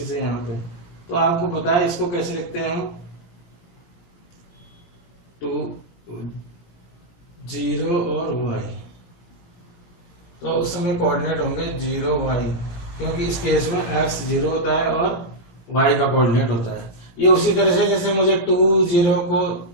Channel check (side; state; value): right; late; 17 ms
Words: है यहाँ पे, तो आपको पता है इसको कैसे लिखते हैं हम, 2 0 और y। तो उस समय कोऑर्डिनेट होंगे 0 y, क्योंकि इस केस में x 0 होता है और y का कोऑर्डिनेट होता है। ये उसी तरह से जैसे मुझे 2 0 को